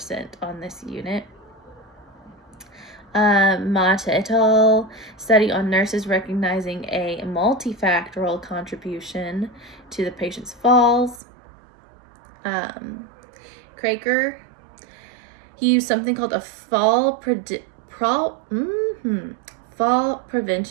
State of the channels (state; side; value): drops out; left; at 11.2 s